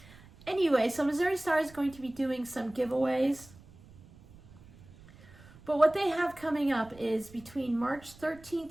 Anyway, so Missouri Star is going to be doing some giveaways, but what they have coming up is between March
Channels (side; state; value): right; noise; rumble, 22 dB below the sound